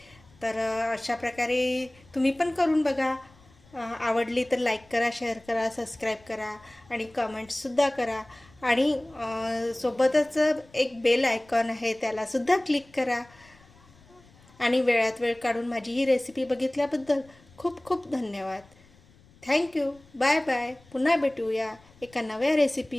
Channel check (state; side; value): noise; left; rumble, 27 dB below the sound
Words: तर अशा प्रकारे तुम्ही पण करून बघा. आवडली तर लाईक करा, शेअर करा, सबस्क्राईब करा आणि कमेंट्ससुद्धा करा. आणि सोबतच एक बेल आयकॉन आहे, त्यालासुद्धा क्लिक करा. आणि वेळात वेळ काढून माझी ही रेसिपी बघितल्याबद्दल खूप खूप धन्यवाद. थँक्यू. Bye bye. पुन्हा भेटूया एका नव्या